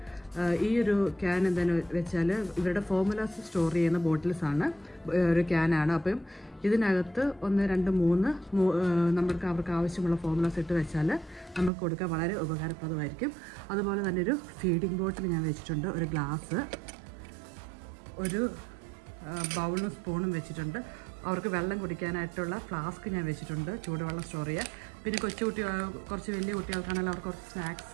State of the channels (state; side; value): drops out; left; at 11.7 s